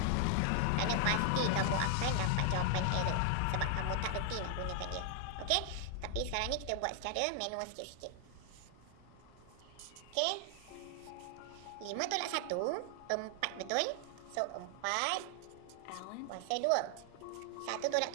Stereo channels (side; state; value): both; different; correlation 0.00